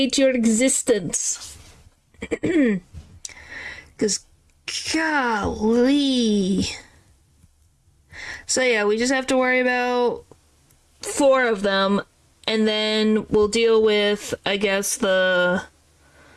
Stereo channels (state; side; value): identical; both; correlation 1.00